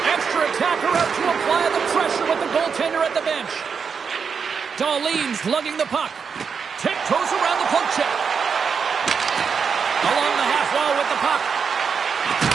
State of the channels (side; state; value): left; quieter; 6.1 dB